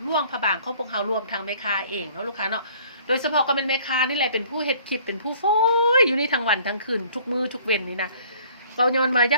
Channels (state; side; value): inverted; both; correlation -0.55